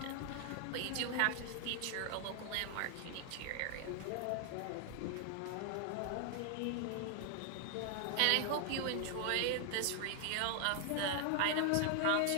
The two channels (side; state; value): both; different; correlation 0.00